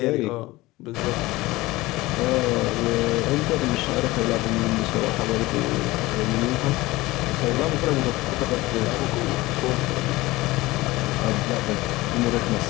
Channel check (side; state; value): right; quieter; 19.6 dB